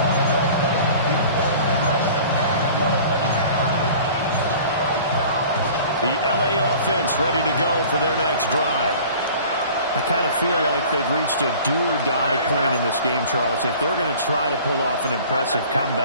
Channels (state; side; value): inverted; both; correlation -0.45